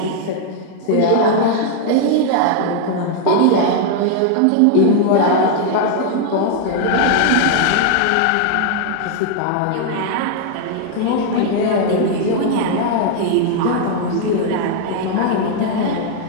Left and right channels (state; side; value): different; both; correlation 0.00